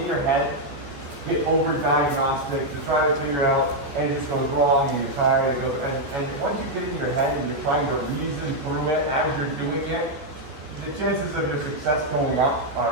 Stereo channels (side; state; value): left; late; 14 ms